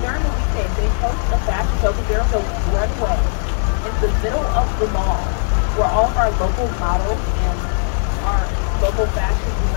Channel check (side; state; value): right; silent; digital silence